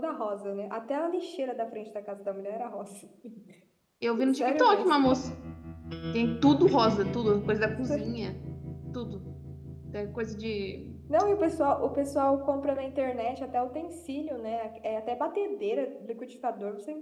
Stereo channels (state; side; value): identical; both; correlation 1.00